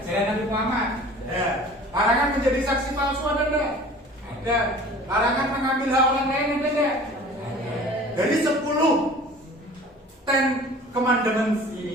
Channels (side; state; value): both; normal; correlation 0.45